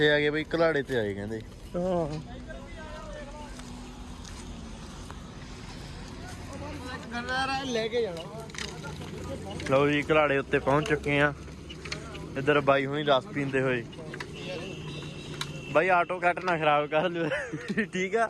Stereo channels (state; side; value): identical; both; correlation 1.00